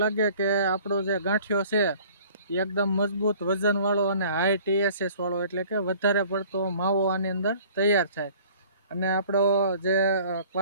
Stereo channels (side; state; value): both; inverted; correlation -0.51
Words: લાગે કે આપણો જે ગાંઠિયો છે એ એકદમ મજબૂત, વજનવાળો અને હાઈ TSS વાળો, એટલે કે વધારે પડતો માવો આની અંદર તૈયાર થાય. અને આપણો જે